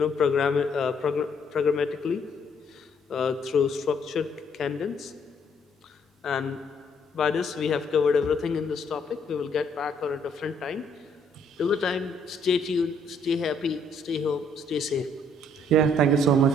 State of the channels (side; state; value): both; normal; correlation 0.67